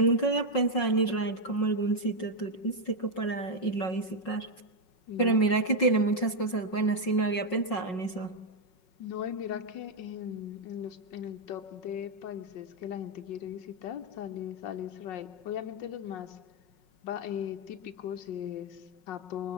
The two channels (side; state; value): right; late; 5.5 ms